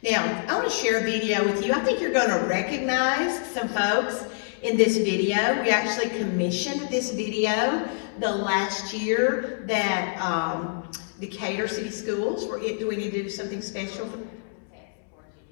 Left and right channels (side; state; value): right; silent; 61 dB below the other